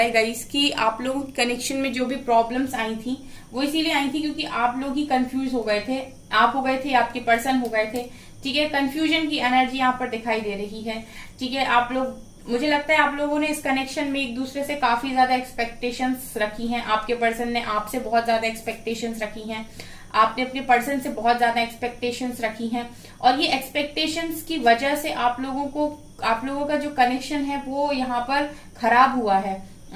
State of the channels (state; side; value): identical; both; correlation 1.00